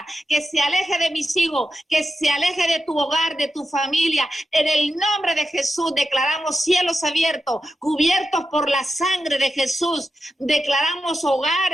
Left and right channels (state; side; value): normal; both; correlation 0.90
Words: que se aleje de mis hijos, que se aleje de tu hogar, de tu familia. En el nombre de Jesús declaramos cielos abiertos, cubiertos por la sangre de Jesús. Declaramos